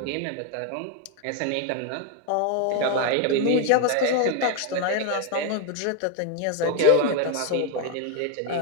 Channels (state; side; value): different; both; correlation 0.01